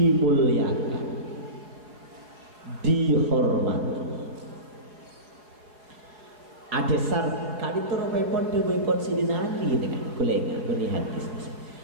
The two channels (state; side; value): late; left; 4.9 ms